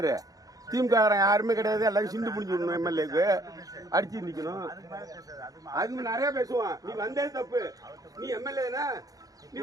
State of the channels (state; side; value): late; left; 0.17 ms